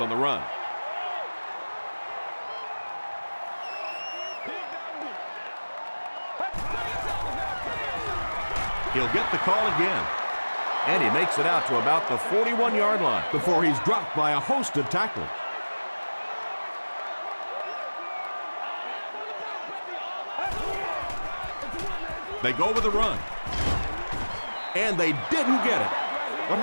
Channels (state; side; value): inverted; both; correlation -1.00